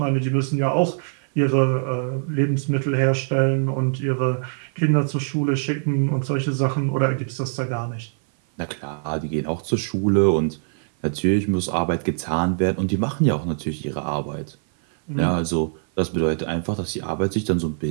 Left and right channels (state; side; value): silent; left; 56 dB below the other